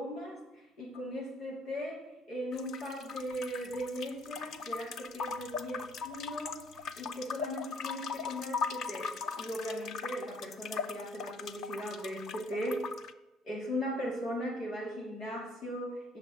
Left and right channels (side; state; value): both; normal; correlation 0.62